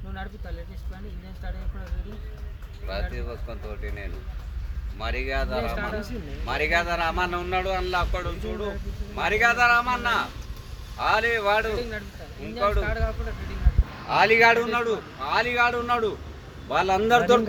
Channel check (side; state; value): both; identical; correlation 1.00